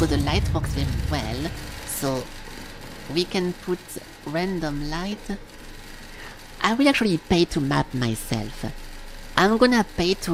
the light works very well. So we can put random light. I will actually pay to map myself. I'm gonna pay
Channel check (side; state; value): both; identical; correlation 1.00